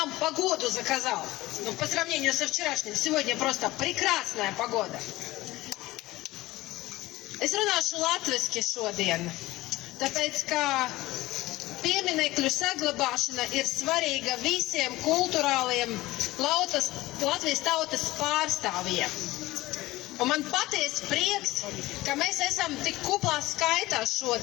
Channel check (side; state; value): right; quieter; 18.4 dB